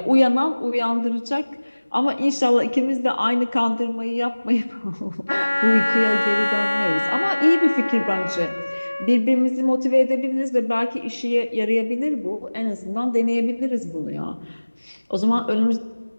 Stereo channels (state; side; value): inverted; both; correlation -1.00